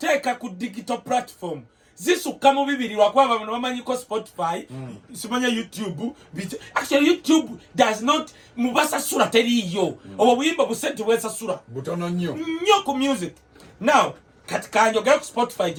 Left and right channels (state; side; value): identical; both; correlation 1.00